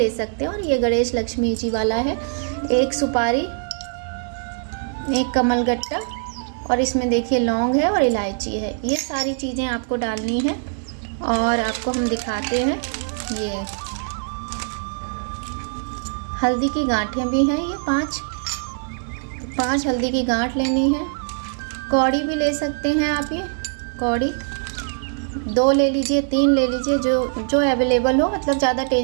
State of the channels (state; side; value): silent; left; digital silence